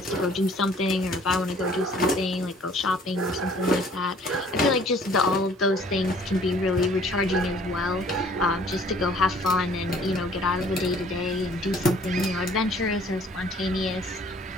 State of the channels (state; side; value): normal; both; correlation 0.56